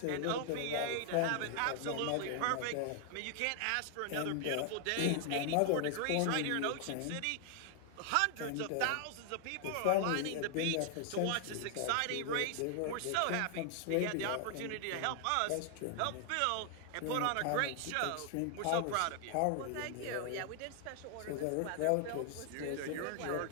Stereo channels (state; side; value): different; both; correlation 0.00